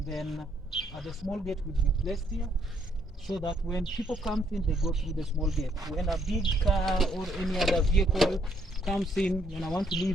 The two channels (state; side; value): normal; both; correlation 0.70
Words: then the small gate will be placed here, so that when people come in, they go through the small gate. When a big car or any other vehicle comes in, when I want to